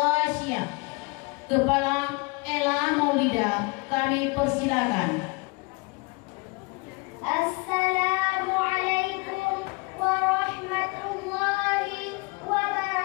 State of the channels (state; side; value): quieter; right; 28.1 dB